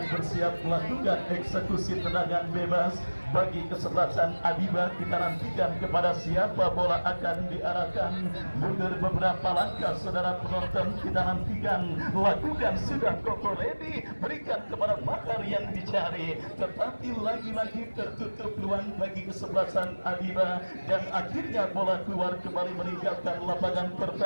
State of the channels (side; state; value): both; inverted; correlation -1.00